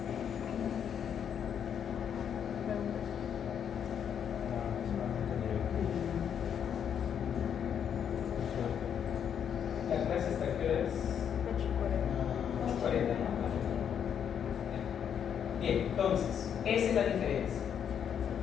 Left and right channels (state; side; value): quieter; right; 8.4 dB